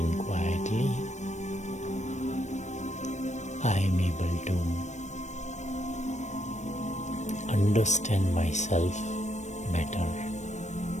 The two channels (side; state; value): right; late; 0.34 ms